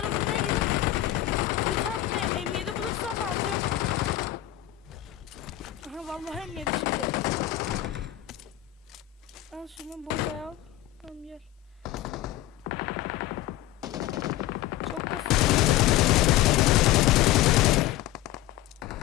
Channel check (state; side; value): quieter; right; 14.4 dB